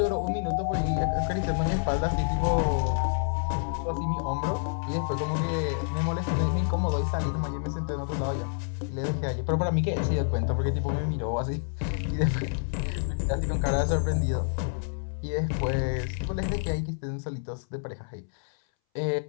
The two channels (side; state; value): right; silent; 59 dB below the other